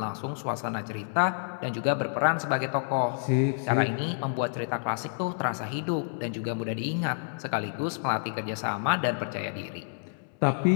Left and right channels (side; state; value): right; silent; 59 dB below the other